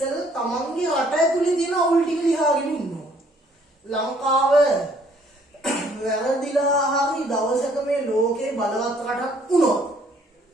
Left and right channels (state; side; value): normal; both; correlation 0.62